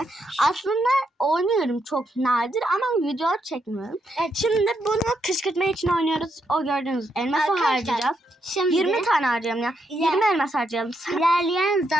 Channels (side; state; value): both; normal; correlation 0.79